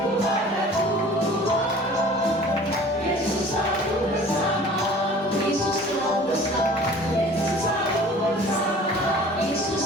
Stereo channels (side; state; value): both; normal; correlation 0.46